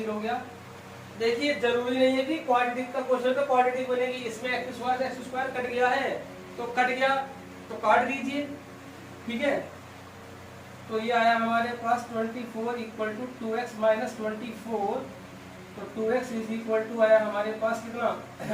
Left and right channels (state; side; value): identical; both; correlation 1.00